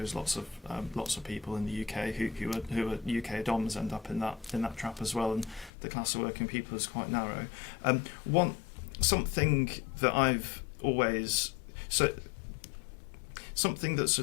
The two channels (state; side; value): drops out; right; at 5.7 s